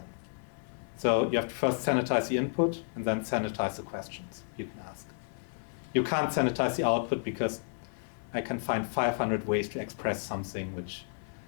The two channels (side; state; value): right; silent; 57 dB below the other